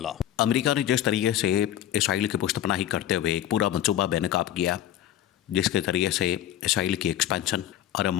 अमेरिका ने जिस तरीके से इसराइल की पुष्टपनाही करते हुए एक पूरा मंसूबा बेनकाब किया, जिसके ज़रिए से इसराइल की एक्सपेंशन अरब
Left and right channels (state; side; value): quieter; right; 11.9 dB